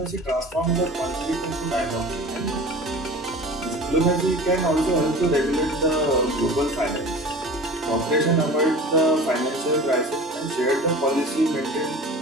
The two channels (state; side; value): normal; both; correlation 0.38